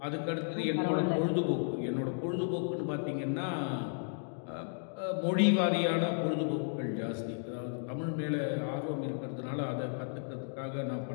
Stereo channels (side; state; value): right; silent; digital silence